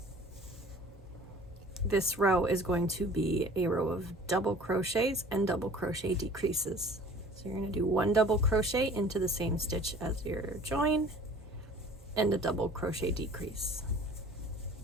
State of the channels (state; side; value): normal; both; correlation 0.47